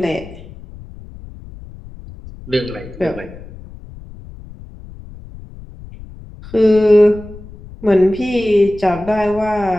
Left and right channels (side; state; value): left; noise; rumble, 17 dB below the sound